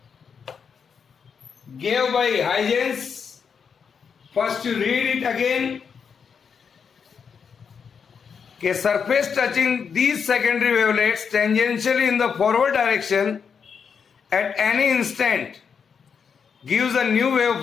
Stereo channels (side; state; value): right; quieter; 6.5 dB